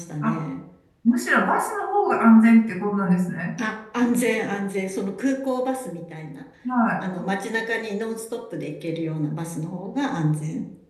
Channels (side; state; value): both; identical; correlation 1.00